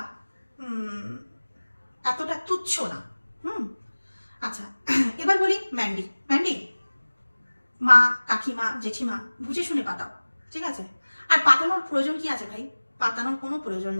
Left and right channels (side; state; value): both; inverted; correlation -1.00